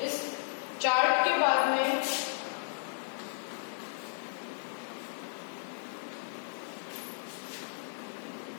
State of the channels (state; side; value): silent; right; 55 dB below the other